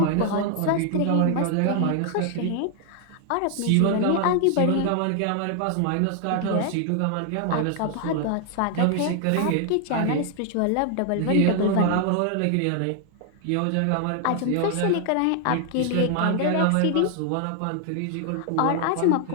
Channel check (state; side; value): different; both; correlation 0.00